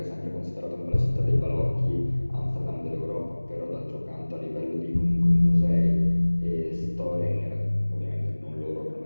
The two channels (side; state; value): both; inverted; correlation -1.00